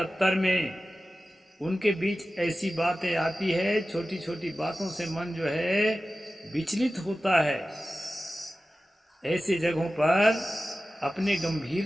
में, उनके बीच ऐसी बातें आती है, छोटी छोटी बातों से मन जो है विचलित होता है। ऐसी जगहों पर अपने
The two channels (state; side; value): normal; both; correlation 0.95